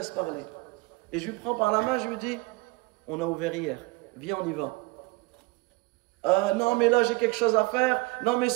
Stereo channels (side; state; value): left; quieter; 24.5 dB